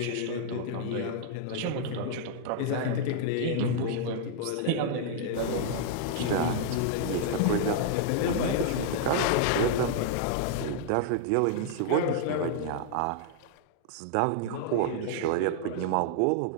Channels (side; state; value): both; different; correlation -0.01